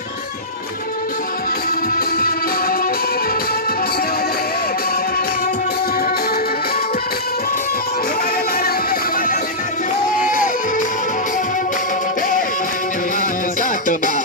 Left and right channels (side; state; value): both; normal; correlation -0.15